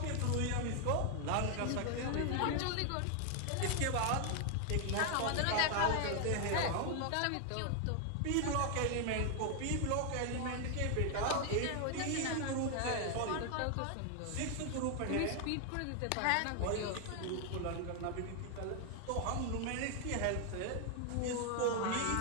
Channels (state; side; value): different; both; correlation 0.00